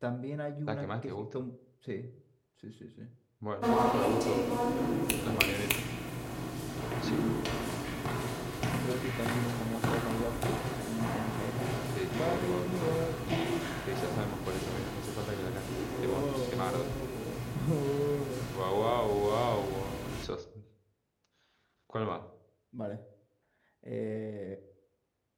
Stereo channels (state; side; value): identical; both; correlation 1.00